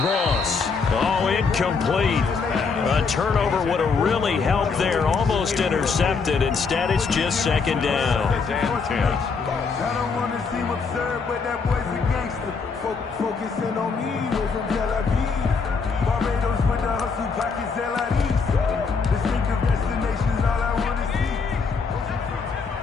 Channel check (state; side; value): quieter; right; 5.0 dB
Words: Oh, incomplete. A turnover would have really helped there. Almost intercepted. Instead, it's just 2nd down. I don't want to seem absurd, but that boy's a gangster. Focusing on me, we're from Tel Aviv. Barbados with the hustle, pockets LIDs. Distinctive destinations, all I want to see.